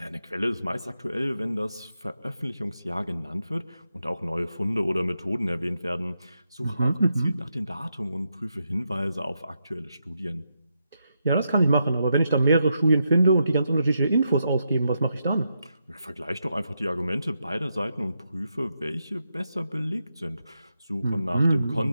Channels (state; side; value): inverted; both; correlation -0.84